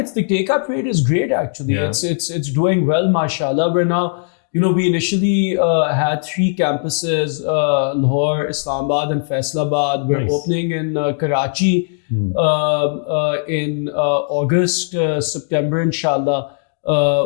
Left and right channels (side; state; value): right; silent; digital silence